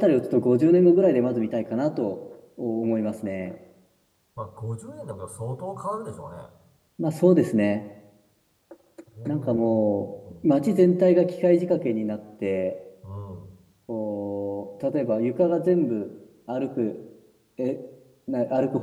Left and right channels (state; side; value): identical; both; correlation 1.00